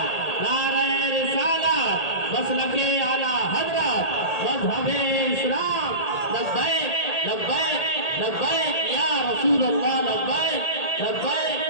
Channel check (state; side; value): late; right; 1.8 ms